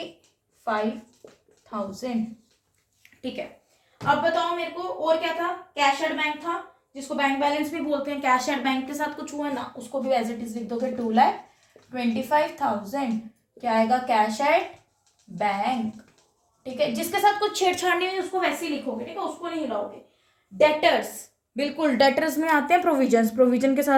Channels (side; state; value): both; identical; correlation 1.00